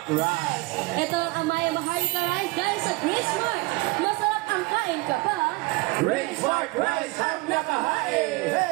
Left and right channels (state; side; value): quieter; left; 22.9 dB